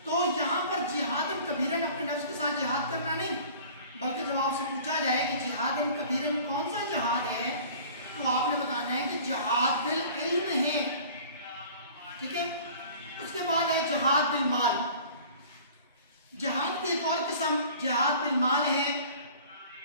تو یہاں پر جہادن کبیرن اپنے نفس کے ساتھ جہاد کرنا نہیں، بلکہ جب آپ سے پوچھا جائے کہ جہادن کبیرن کون سا جہاد ہے، تو آپ نے بتانا ہے کہ جہاد بالعلم ہے۔ ٹھیک ہے، اس کے بعد ہے جہاد بالمال۔ جہاد کی ایک اور قسم جہاد بالمال ہے۔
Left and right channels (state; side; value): inverted; both; correlation -0.46